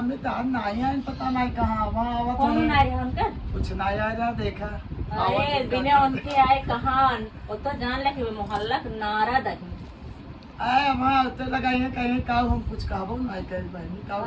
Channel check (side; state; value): both; identical; correlation 1.00